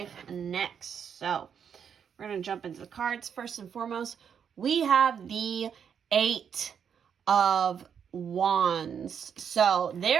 next. So we're going to jump into the cards. First and foremost, we have the 8 of Wands. So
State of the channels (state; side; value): quieter; left; 7.6 dB